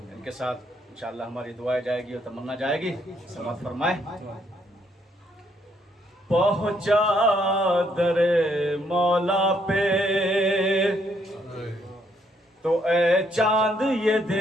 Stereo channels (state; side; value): normal; both; correlation 0.71